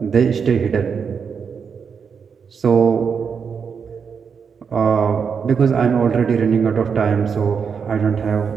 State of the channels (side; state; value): left; quieter; 6.3 dB